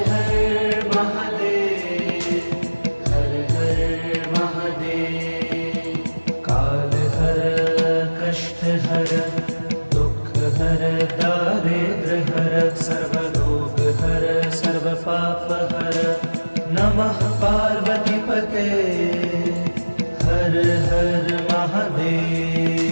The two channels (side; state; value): both; inverted; correlation -1.00